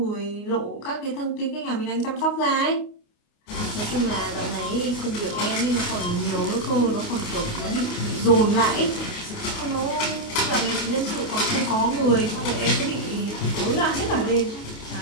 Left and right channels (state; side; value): late; right; 29 ms